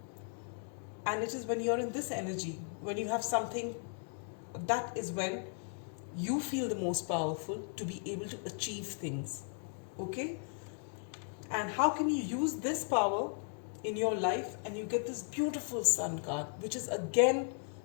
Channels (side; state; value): right; silent; 54 dB below the other